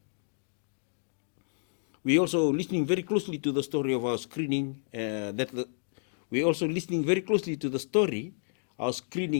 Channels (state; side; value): silent; right; digital silence